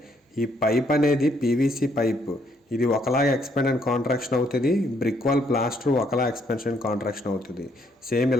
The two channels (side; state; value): both; normal; correlation 0.70